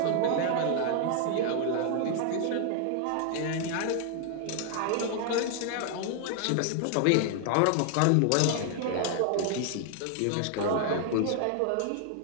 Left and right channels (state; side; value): different; both; correlation 0.00